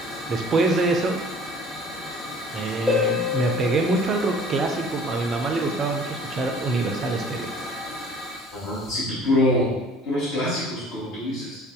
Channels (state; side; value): normal; both; correlation 0.50